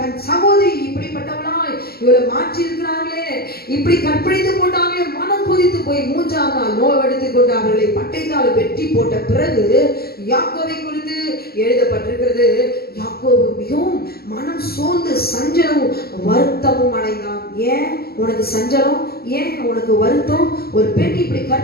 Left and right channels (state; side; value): late; right; 0.45 ms